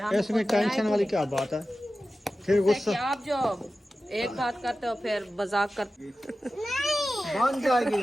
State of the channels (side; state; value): both; normal; correlation 0.94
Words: इसमें टेंशन वाली क्या बात है? फिर गुस्सा आप जो एक बात करते हो फिर मजाक करते बन जाएगी